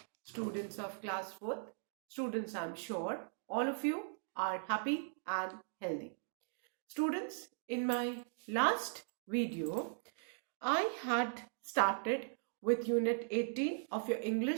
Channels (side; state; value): left; silent; digital silence